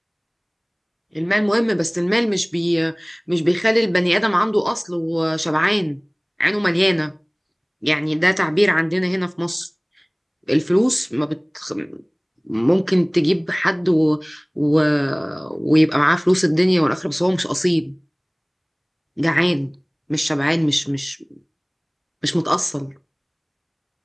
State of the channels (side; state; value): both; identical; correlation 1.00